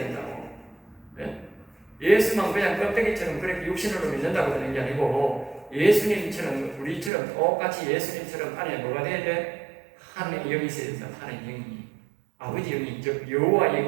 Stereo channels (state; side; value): drops out; left; at 7.1 s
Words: 네? 예수만 그냥 껍데기처럼 그렇게 육신으로 믿는다고 되는 게 아니고, 예수님처럼 우리처럼 똑같이 예수님처럼 안에 뭐가 돼야 돼? 하나님의 영이 있어야 된다. 하나님의 영이, 아버지 영이, 즉 여호와